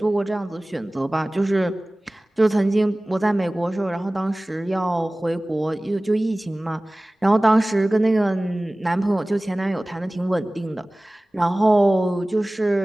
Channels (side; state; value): both; normal; correlation 0.98